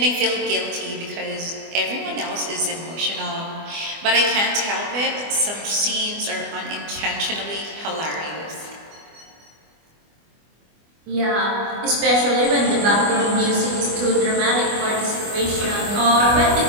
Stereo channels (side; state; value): left; late; 24 ms